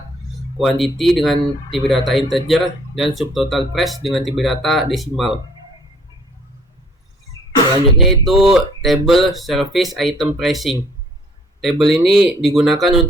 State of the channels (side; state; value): both; normal; correlation 0.58